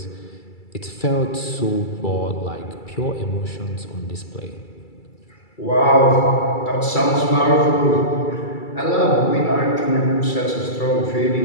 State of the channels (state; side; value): late; right; 2.3 ms